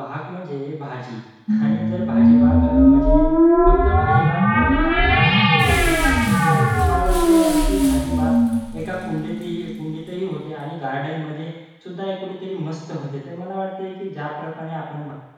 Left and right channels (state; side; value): identical; both; correlation 1.00